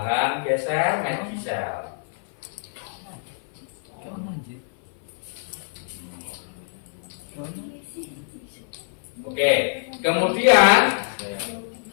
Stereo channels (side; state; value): right; silent; 55 dB below the other